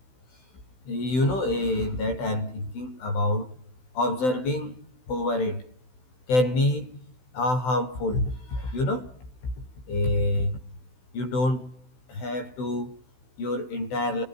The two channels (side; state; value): right; late; 16 ms